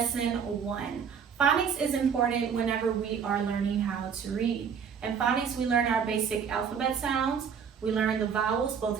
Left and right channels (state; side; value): quieter; left; 6.9 dB